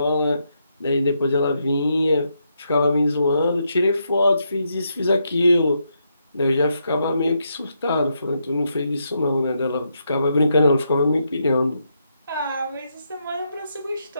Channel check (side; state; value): both; inverted; correlation -0.80